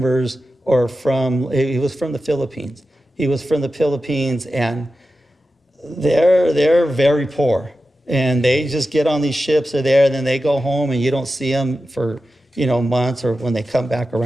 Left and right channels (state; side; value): normal; both; correlation 0.92